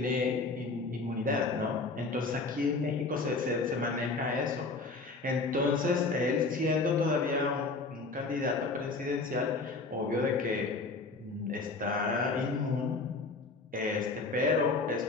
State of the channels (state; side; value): quieter; right; 3.8 dB